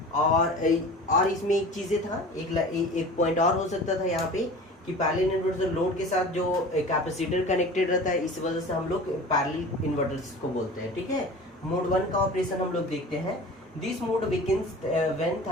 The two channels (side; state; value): both; normal; correlation 0.38